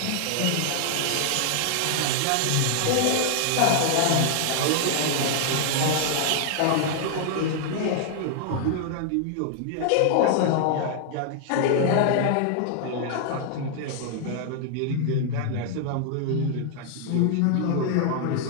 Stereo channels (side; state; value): both; different; correlation 0.00